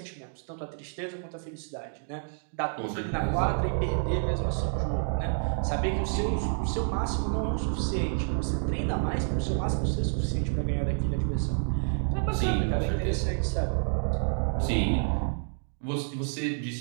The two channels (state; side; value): silent; left; 59 dB below the other